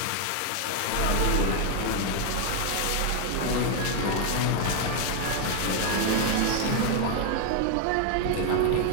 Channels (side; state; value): both; different; correlation 0.00